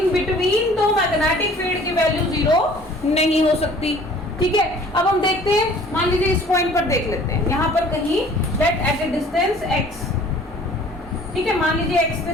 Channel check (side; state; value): both; normal; correlation 0.51